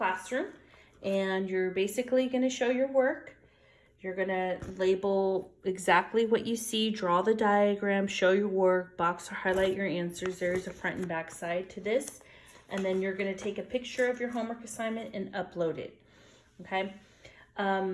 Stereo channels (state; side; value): identical; both; correlation 1.00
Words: And you're basically going to show your work. You're going to label exactly what you see, draw the diagram, show your work, box or highlight your answers. There's a front and back side to this. And then you're going to take a picture of your homework assignment and upload it. Okay.